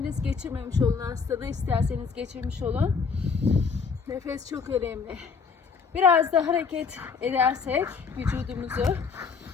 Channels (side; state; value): right; quieter; 5.5 dB